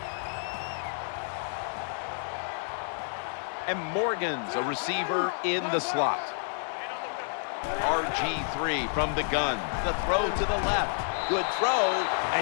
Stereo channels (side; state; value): right; silent; digital silence